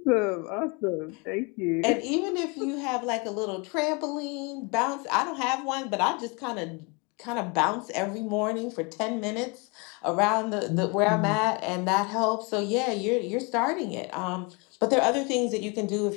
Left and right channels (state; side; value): quieter; right; 30.6 dB